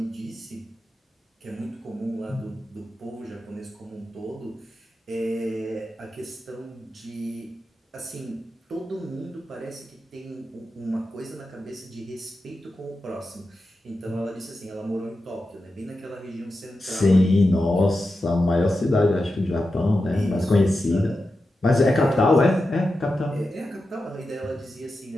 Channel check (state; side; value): normal; both; correlation 0.90